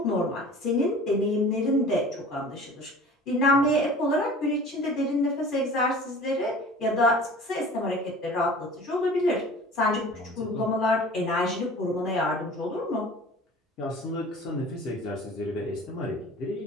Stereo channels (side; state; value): both; normal; correlation 0.43